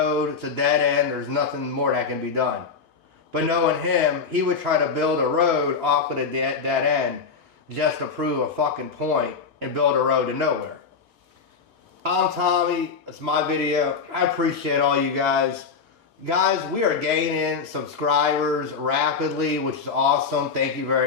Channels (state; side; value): quieter; right; 5.5 dB